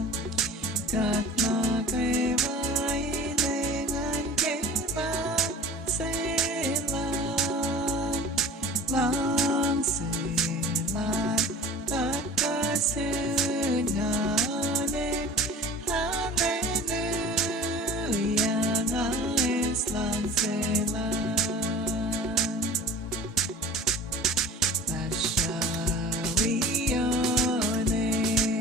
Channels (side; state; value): both; normal; correlation 0.41